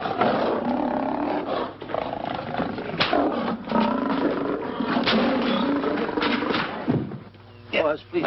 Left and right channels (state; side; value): identical; both; correlation 1.00